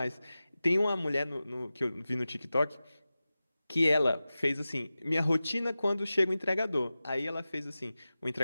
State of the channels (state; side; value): inverted; both; correlation -0.95